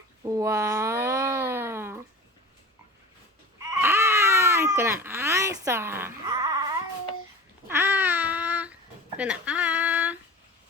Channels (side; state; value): both; normal; correlation 0.35